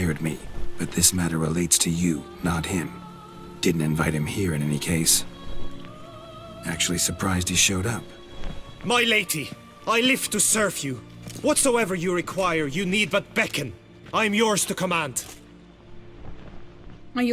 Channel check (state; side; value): identical; both; correlation 1.00